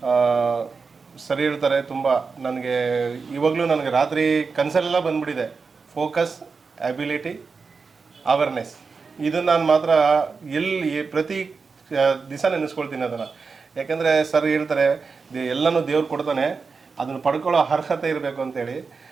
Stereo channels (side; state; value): left; quieter; 4.8 dB